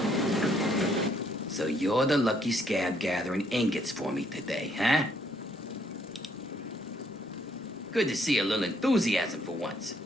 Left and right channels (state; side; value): normal; both; correlation 0.69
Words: So you're the lucky scab gathering ingots for me today, huh? Good to see a little enthusiasm for once.